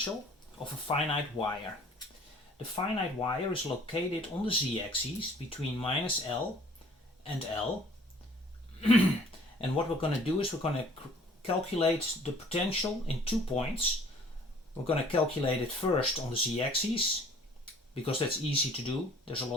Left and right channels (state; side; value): normal; both; correlation 0.53